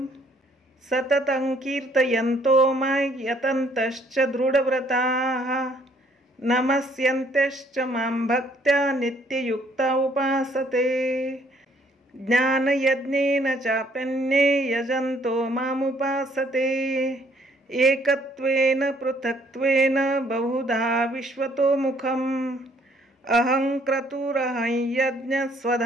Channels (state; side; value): normal; both; correlation 0.64